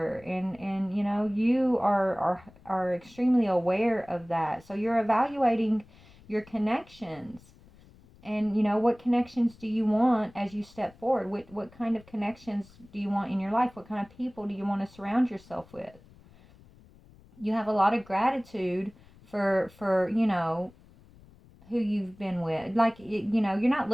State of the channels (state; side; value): noise; left; rumble, 25 dB below the sound